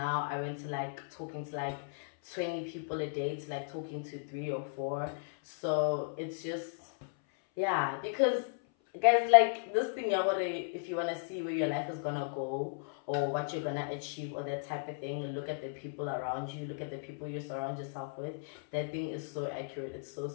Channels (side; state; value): right; silent; 54 dB below the other